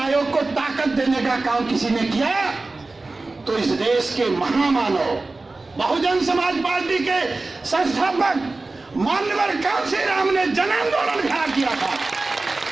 को ताकत देने का काम किसी ने किया तो इस देश के महामानव, बहुजन समाज पार्टी के संस्थापक मान्यवर कांशीराम ने जन आंदोलन खड़ा किया था।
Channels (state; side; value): quieter; left; 3.4 dB